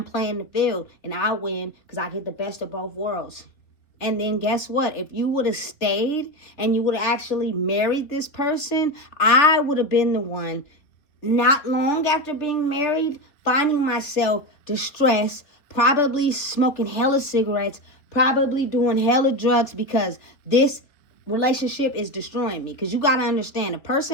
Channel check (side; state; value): right; late; 3.4 ms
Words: playing the field and I win because I get the best of both worlds. And then guess what? If you would have stayed and you would have actually married this person, I would have been the one not long after being married, finding myself distressed, probably smoking hella cigarettes, probably doing hella drugs, because this relationship is destroying me. Because you got to understand, a